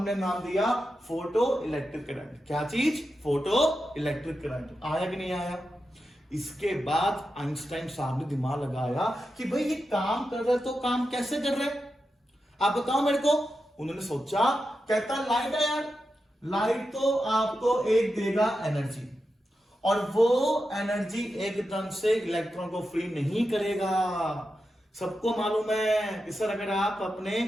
नाम दिया फोटो इलेक्ट्रिक करंट। क्या चीज? Photo electric current. आया कि नहीं आया? इसके बाद आइंस्टाइन साहब ने दिमाग लगाया कि भाई ये काम कर रहे, तो काम कैसे कर रहे, आप बताओ मेरे को। उन्होंने सोचा, कहता लाइट है यार, लाइट तो आपको एक देगा एनर्जी, और वो एनर्जी एकदम से इलेक्ट्रॉन को फ्री नहीं करेगा। सबको मालूम है कि सर अगर आप अपने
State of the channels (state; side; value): normal; both; correlation 0.89